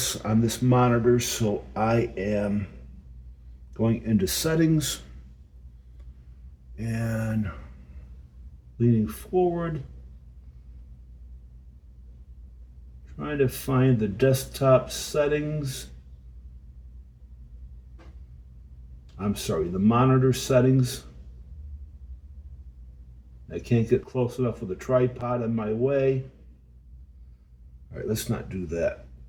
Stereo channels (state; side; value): identical; both; correlation 1.00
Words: on this monitor, so I am going into settings and leaning forward, trying to find the desktop settings. I'm sorry, the monitor settings. I can't get close enough with a tripod in my way. All right, let's not do that.